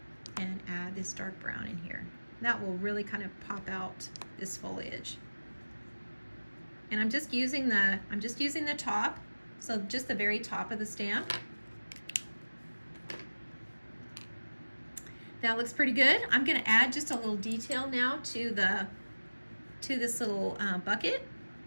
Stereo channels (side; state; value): both; inverted; correlation -1.00